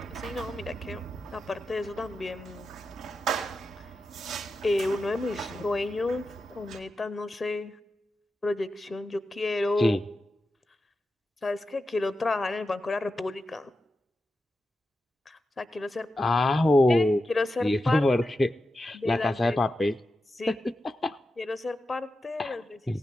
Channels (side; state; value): both; normal; correlation 0.90